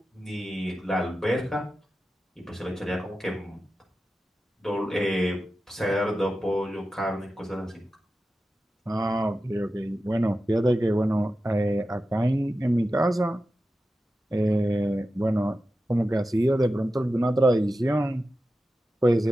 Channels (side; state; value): both; normal; correlation 0.92